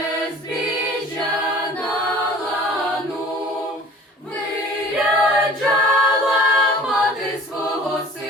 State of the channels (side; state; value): both; normal; correlation 0.47